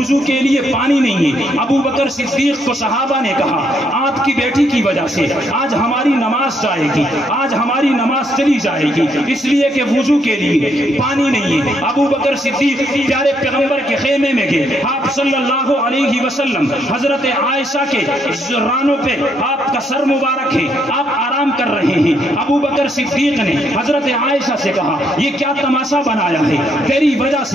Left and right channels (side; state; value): both; normal; correlation 0.73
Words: کے لیے پانی نہیں ہے۔ ابو بکر صدیق کو صحابہ نے کہا آپ کی بیٹی کی وجہ سے آج ہماری نماز جائے گی، آج ہماری نماز چلی جائے گی، اس لیے کہ وضو کے لیے پانی نہیں ہے۔ ابو بکر صدیق پیارے پیغمبر کے خیمے میں گئے، آپ صلی اللہ علیہ وسلم حضرت عائشہ کے رانوں پہ آپ کا سر مبارک ہے، آپ آرام کر رہے ہیں۔ ابو بکر صدیق نے حضرت عائشہ سے کہا یہ کیا تماشا بنایا ہے، تیری وجہ